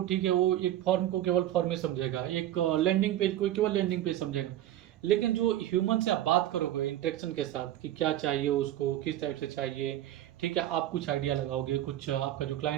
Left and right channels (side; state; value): left; quieter; 13.0 dB